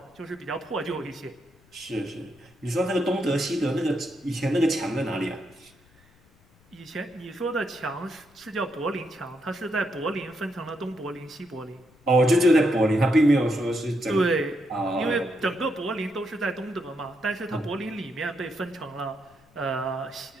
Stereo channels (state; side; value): noise; left; rumble, 30 dB below the sound